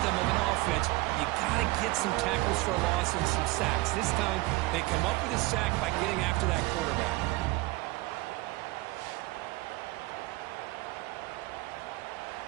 of an offense. You got to get some tackles for a loss and some sacks. This time, they come up with a sack by getting after that quarterback.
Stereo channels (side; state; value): left; quieter; 21.1 dB